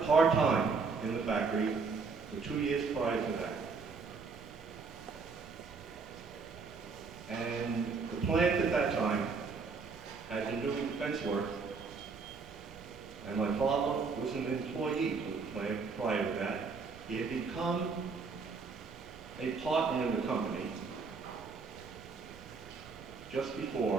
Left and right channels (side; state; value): left; quieter; 4.8 dB